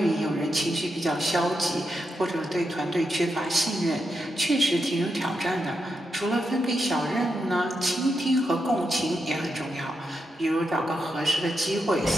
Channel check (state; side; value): normal; both; correlation 0.85